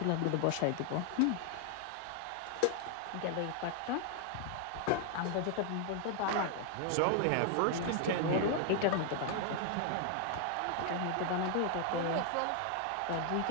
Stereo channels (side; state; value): both; different; correlation 0.00